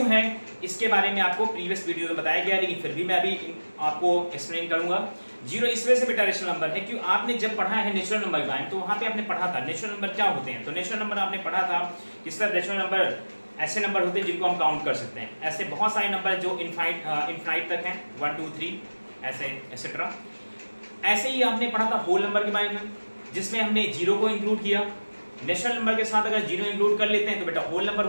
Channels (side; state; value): both; inverted; correlation -1.00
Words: है, इसके बारे में आपको प्रीवियस वीडियो में बताया गया, लेकिन फिर भी मैं अभी आपको एक्सप्लेन करूंगा। जीरो इस वजह से बेटा रेशनल नंबर है क्यों आपने जब पढ़ा है नेचुरल नंबर के बारे में तो वहां पे आपने पढ़ा था नेचुरल नंबर क्या होते हैं। तो नेचुरल नंबर आपने पढ़ा था किस तरह नेचुरल नंबर ऐसे नंबर होते हैं जिनको हम काउंट कर सकते हैं। ऐसे बहुत सारे नंबर जो इनफाइनाइट तक हैं, 1 2 3 ऐसे एक्सेट्रा। ऐसे ही आपने पढ़ा था होल नंबर के बारे में, जिसमें हमने जीरो को इंक्लूड किया। नेचुरल नंबर के साथ अगर जीरो इंक्लूड कर लेते हैं तो बेटा होल नंबर